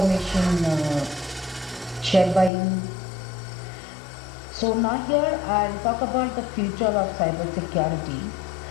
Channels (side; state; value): right; drops out; at 2.5 s